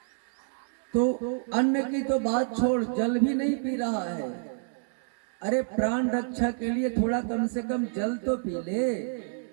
तो अन्न की तो बात छोड़, जल भी नहीं पी रहा है। अरे प्राण रक्षा के लिए थोड़ा कम से कम जल तो पी ले।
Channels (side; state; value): left; silent; digital silence